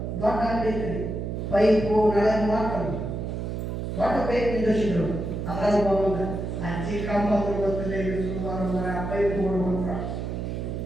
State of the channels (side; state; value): right; noise; hum, 4 dB below the sound